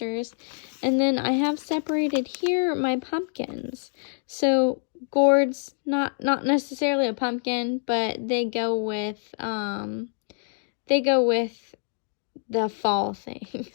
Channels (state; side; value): silent; right; digital silence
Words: And then I have separated here my pumpkins. So gourds, not necessarily a pumpkin, but they go with the fall